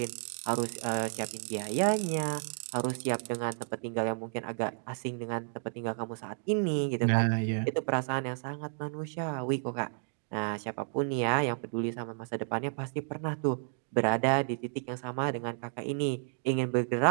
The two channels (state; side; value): silent; left; digital silence